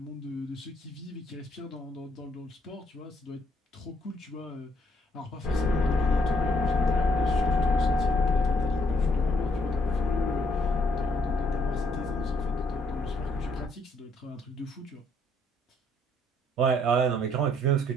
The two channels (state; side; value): normal; both; correlation 0.69